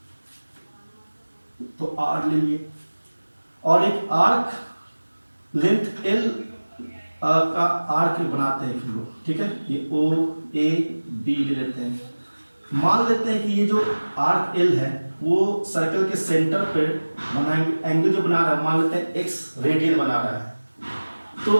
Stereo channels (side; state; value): both; inverted; correlation -1.00